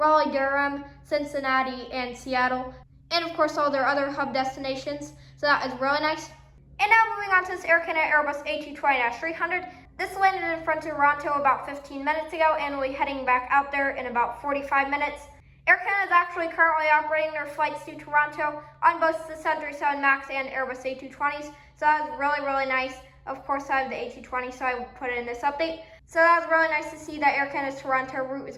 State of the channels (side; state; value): both; identical; correlation 1.00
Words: Durham, Cincinnati, and Seattle, and of course all their other hub destinations, so that is really nice. And now moving on to this Air Canada Airbus A220-300. This landed in front of Toronto about 15 minutes ago, and we'll be heading back out there in about 45 minutes. Air Canada is actually currently operating their flights to Toronto on both the 737 MAX and Airbus A220s, so that was really, really nice. Of course, I have the A220, so I put it in this update. So that was really nice to see that Air Canada's Toronto route is